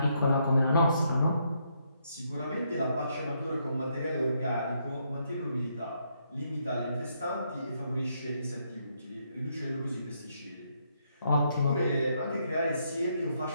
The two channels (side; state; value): both; inverted; correlation -0.75